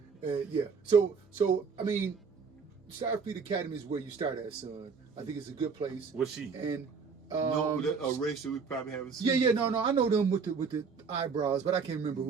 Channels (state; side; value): quieter; left; 5.4 dB